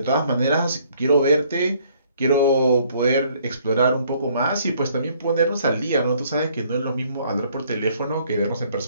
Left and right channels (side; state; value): both; inverted; correlation -0.63